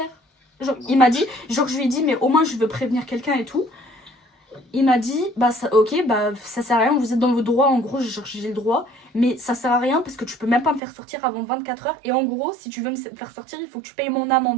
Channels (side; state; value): left; drops out; at 10.8 s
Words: Genre, il m'a dit, genre, je lui ai dit, mais au moins, je veux prévenir quelqu'un et tout. Il m'a dit, bah, ça, ok, bah, ça sert à rien, vous êtes dans vos droits, en gros, j'ai le droit. Mais ça sert à rien parce que tu peux même pas me faire sortir avant 24 heures. Et en gros, si tu veux me faire sortir, il faut que tu payes mon